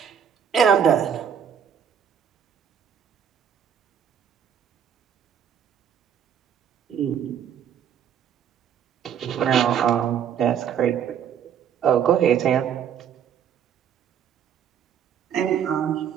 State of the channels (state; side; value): quieter; left; 8.5 dB